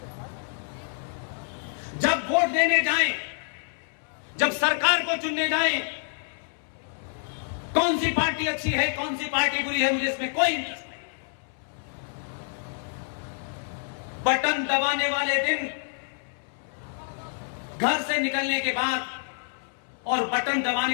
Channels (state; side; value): silent; right; 60 dB below the other